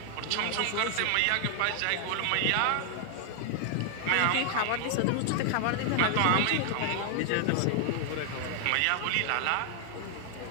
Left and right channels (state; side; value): different; both; correlation 0.00